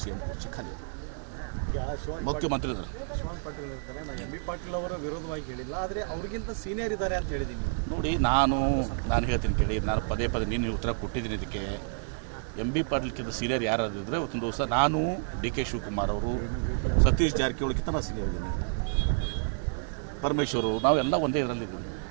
ಸಿ ಎಂ ಕುರ್ಚಿ ಖಾಲಿ ಮುಖ್ಯಮಂತ್ರಿ ಇದ್ದಾರೆ. ಶಿವಾನಂದ ಪಾಟೀಲ್ ಇರ್ತಾರೆ. ನಾನು ಎಂ ಬಿ ಪಾಟೀಲ್ ಅವರ ವಿರೋಧವಾಗಿ ಹೇಳಿಲ್ಲ, ಆದರೆ ಅವ್ರಿಗಿಂತ ಸೀನಿಯರ್ ಇದ್ದಾರೆ ಅಂತ ಹೇಳಿದ್ದೀನಿ. ನೋಡಿ, ನಾನು ಹೇಳ್ತೀನಿ ಕೇಳಿ, ನಾನು ಪದೇ ನೀನು ಉತ್ತರ ಕೊಟ್ಟಿದ್ದೀನಿ. ಇದಕ್ಕೆ ಎಂ ಬಿ ಪಾಟೀಲ್ಕಿಂತ ಸೀನಿಯರ್ ಯಾರಾದಿದ್ರೆ ಇವತ್ತೊಂದು ದಿವಸ ನಾನು ಡಿ ಕೆ ಶಿವಕುಮಾರ್ ಅವರು, ಸತೀಶ್ ಜಾರಕಿಹೊಳಿಗಿಂತ ನಾನು ಸೀನಿಯರ್ ಇದ್ದೀನಿ, ಪರಮೇಶ್ವರು, ನಾವೆಲ್ಲ ಒಂದೇ ಇದರಲ್ಲಿದ್ದೀವಿ.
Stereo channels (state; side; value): silent; left; 58 dB below the other